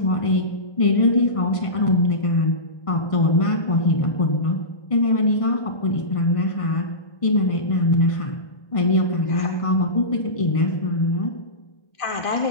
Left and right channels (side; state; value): right; late; 1.5 ms